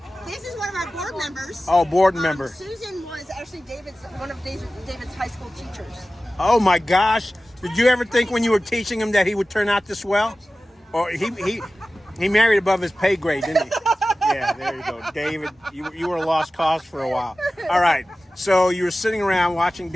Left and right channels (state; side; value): normal; both; correlation 0.96